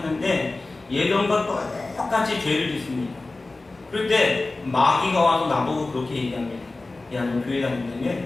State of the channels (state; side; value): quieter; right; 3.2 dB